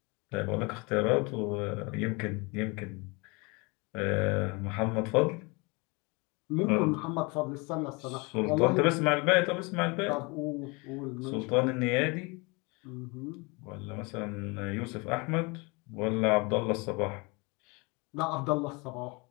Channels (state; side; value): quieter; right; 28.2 dB